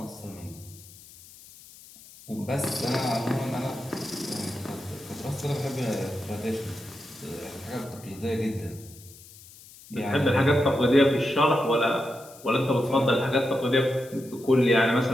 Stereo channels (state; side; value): noise; left; hiss, 21 dB below the sound